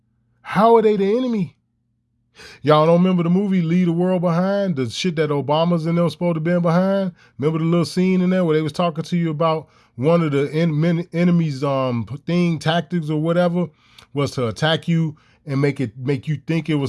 How are they the enemy? Y'all don't remember the movie Leave the World Behind? The shit that Obama's and them supposed to be behind? Remember the little scene in there where they was talking to you about one of the enemy's tactics or whatever was to attack you and make you think it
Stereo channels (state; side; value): identical; both; correlation 1.00